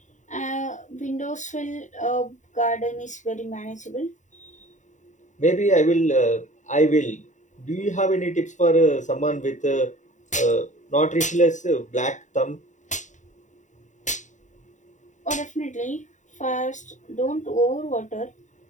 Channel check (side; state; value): right; late; 0.36 ms